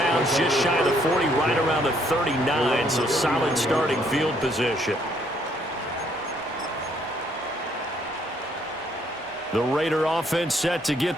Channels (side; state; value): both; normal; correlation 0.68